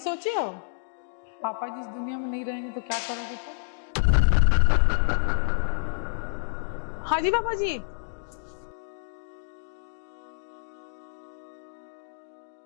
हो पापा जी इस दुनिया में नहीं रहेंगे तो क्या करोगे तुम? हाँ जी पापा जी।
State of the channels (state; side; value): silent; right; digital silence